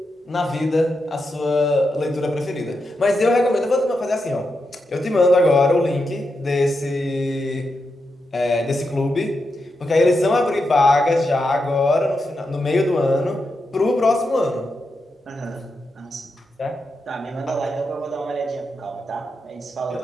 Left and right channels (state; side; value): normal; both; correlation 0.86